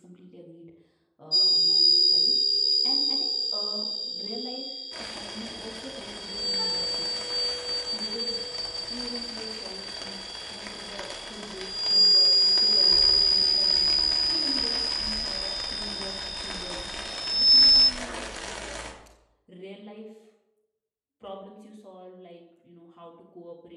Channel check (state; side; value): identical; both; correlation 1.00